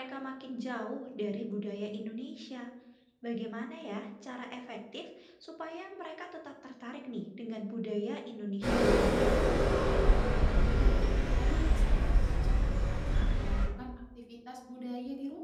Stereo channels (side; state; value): both; identical; correlation 1.00